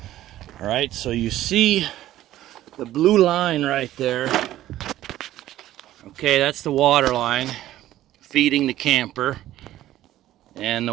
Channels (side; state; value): left; quieter; 13.9 dB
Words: All right, so you see the blue line right there. Okay, that's the water line feeding the camper, and